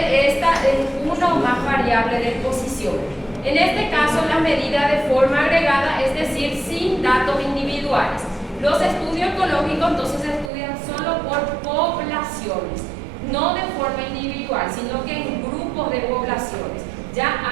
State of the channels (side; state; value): left; drops out; at 10.5 s